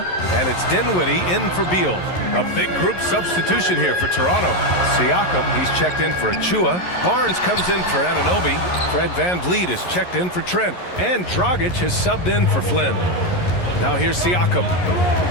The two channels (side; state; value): right; late; 11 ms